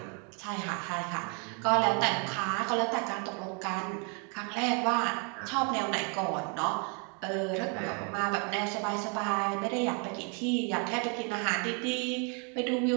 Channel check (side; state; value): left; quieter; 37.1 dB